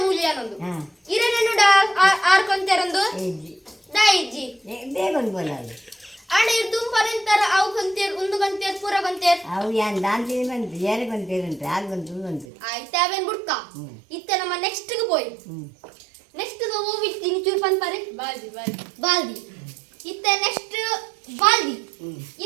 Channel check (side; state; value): left; drops out; at 12.5 s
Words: ಮೂಲ್ಯ ಅನ್ನೊಂದು ಇರನೆನ್ನುಡ ಆರ್ಕೊಂತೇರಂದು ದಾ ಇಜ್ಜಿ ಬೇಗನ್ ಬೋಲಲ್ಲ ಆಡ ಇರ್ ತುಂಬಾರೆಂತರ ಅವು ಕೊಂತೇರ್ ಉಂದು ಕೊಂತೇರ್ ಪೂರ ಕೊಂತೇರ್ ಅವು ಯಾನ್ ದಾಂತಿ ಬಂತು ಏರ್ ಕೊಂತೇರಂತೆ ಆರ್ ಬಂತು ಬಂತು ಆಯ್ತು ಅವೇನ್ ಬುಡ್ಕ ಇತ್ತೆ ನಮ್ಮ ನೆಕ್ಸ್ಟ್ ಗೆ ಪೋಯ್ ನೆಕ್ಸ್ಟ್ ಹೋಗಿ ಚೂರು ಪನ್ಪರೆ ಬಾಲ್ದಿ ಇತ್ತೆ ನೆಕ್ಸ್ಟ್ ಬಾಲ್ದಿ